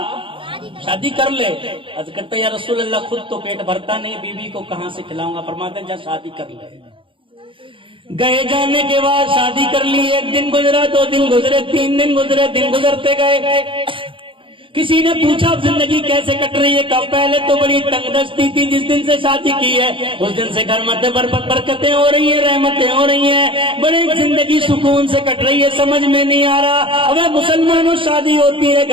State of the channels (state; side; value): late; left; 0.25 ms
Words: شادی کر لے. عرض کرتے یا رسول اللہ خود تو پیٹ بھرتا نہیں، بیوی کو کہاں سے کھلاؤں گا؟ فرماتے جا شادی کر لے. گئے جانے کے بعد شادی کر لی. 1 دن گزرا، 2 دن گزرے، 3 دن گزرے، دن گزرتے گئے. کسی نے پوچھا زندگی کیسے کٹ رہی ہے؟ کہا پہلے تو بڑی تنگ دستی تھی، جس دن سے شادی کی ہے اس دن سے گھر میں برکتیں ہو رہی ہیں، رحمتیں ہو رہی ہیں، بڑی زندگی سکون سے کٹ رہی ہے. سمجھ میں نہیں آ رہا. اب مسلمانوں شادی ہوتی ہے